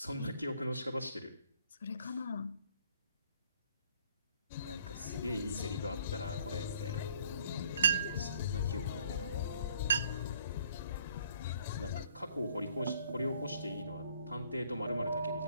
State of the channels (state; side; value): inverted; both; correlation -0.61